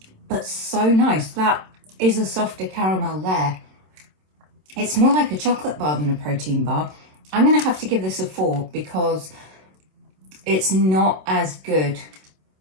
but so nice. That is a softer caramel layer. It's more like a chocolate bar than a protein bar. I'm going to have to give this a 4 because it's not as good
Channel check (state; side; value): late; left; 27 ms